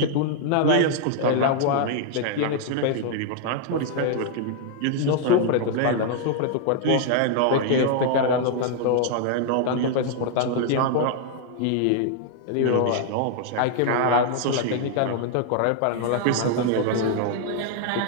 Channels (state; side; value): different; both; correlation 0.00